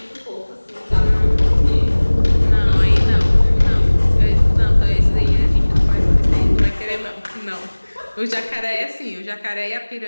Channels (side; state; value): both; inverted; correlation -1.00